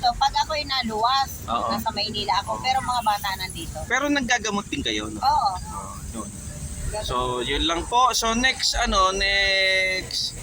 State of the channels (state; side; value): identical; both; correlation 1.00